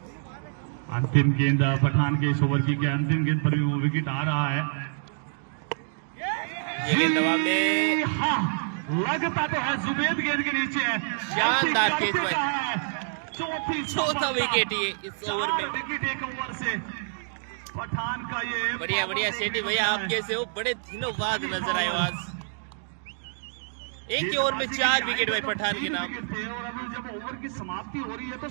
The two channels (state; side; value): silent; left; digital silence